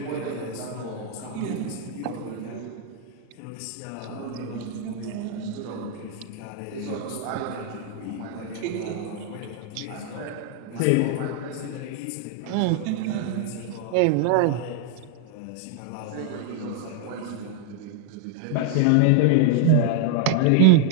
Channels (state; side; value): different; both; correlation 0.00